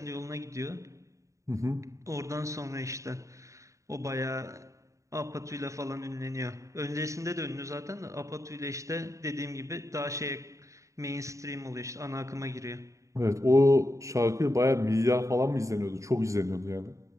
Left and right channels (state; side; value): late; left; 0.15 ms